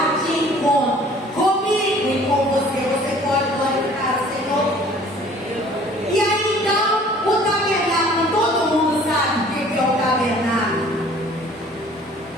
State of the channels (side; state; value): both; normal; correlation 0.52